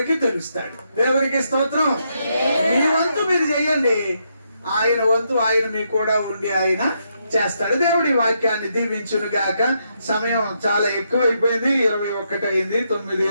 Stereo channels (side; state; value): both; inverted; correlation -0.79